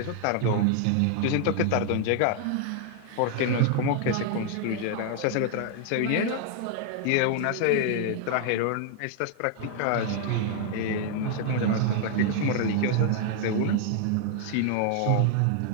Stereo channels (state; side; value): different; both; correlation 0.00